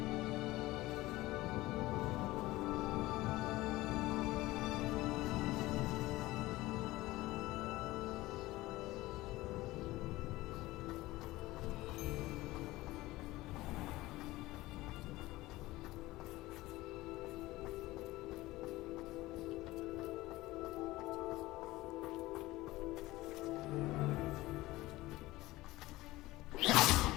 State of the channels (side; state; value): right; quieter; 18.6 dB